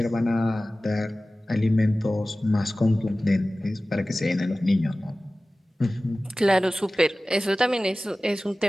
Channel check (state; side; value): normal; both; correlation 0.97